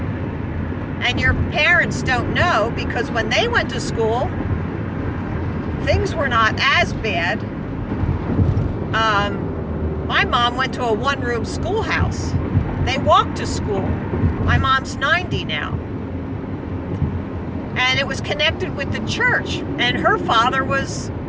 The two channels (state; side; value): identical; both; correlation 1.00